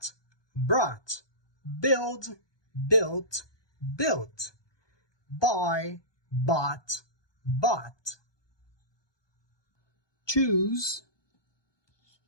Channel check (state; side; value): late; right; 1.2 ms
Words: brought. Build, built, built. Buy, bought, bought. Choose,